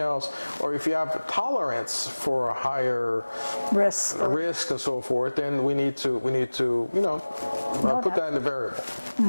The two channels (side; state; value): both; inverted; correlation -1.00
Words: or if you have tolerance for a higher risk and so forth, then we need to you know put that in the variable.